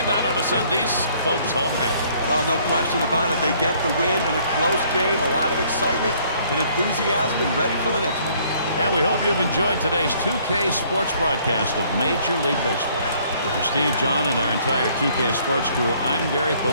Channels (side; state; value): both; inverted; correlation -0.62